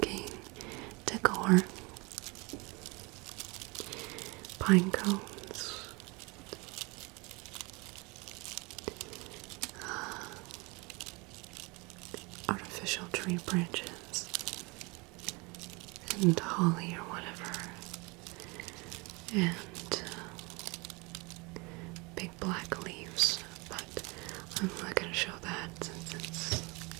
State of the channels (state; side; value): quieter; left; 27.4 dB